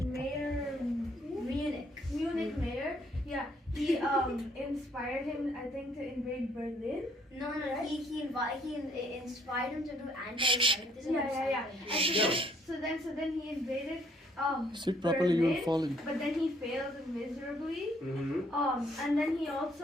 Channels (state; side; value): normal; both; correlation 0.65